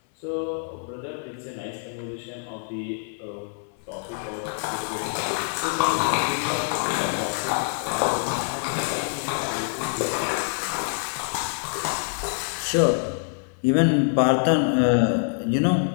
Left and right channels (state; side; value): silent; right; 58 dB below the other